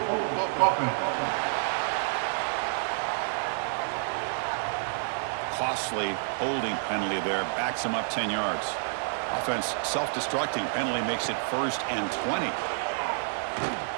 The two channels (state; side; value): silent; left; digital silence